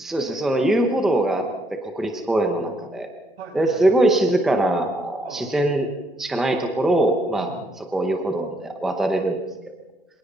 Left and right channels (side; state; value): both; normal; correlation 0.72